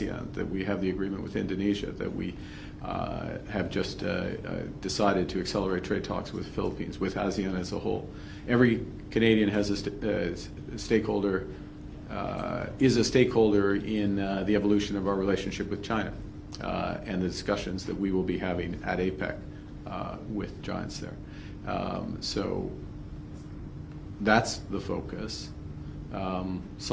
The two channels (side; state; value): both; identical; correlation 1.00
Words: that we have the agreement with Indonesia, that we have just decided to accelerate trade talks with the Philippines, with ASEAN as a whole. Every Canadian has a stakeholder, is a stakeholder in the evolution of our relationship with China and the discussions that we will be having at APEC with giants there. So that's the focus,